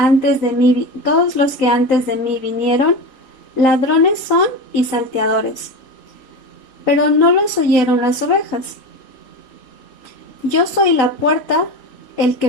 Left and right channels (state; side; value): late; right; 3.9 ms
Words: de mí vinieron, ladrones son y salteadores, pero no los oyeron las ovejas. Yo soy la puerta, el